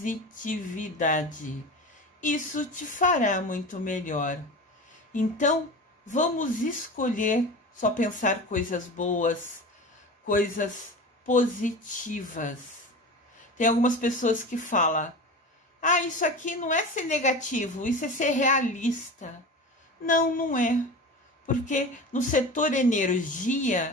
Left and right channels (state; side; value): normal; both; correlation 0.31